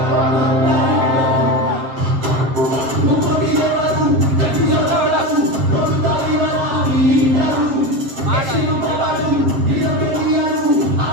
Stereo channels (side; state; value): left; late; 7.3 ms